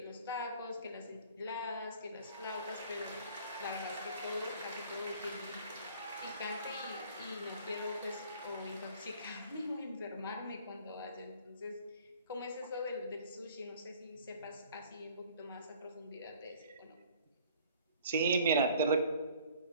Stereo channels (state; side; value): inverted; both; correlation -0.52